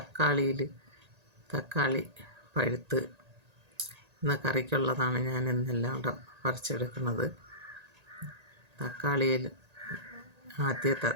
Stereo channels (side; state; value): left; late; 1.8 ms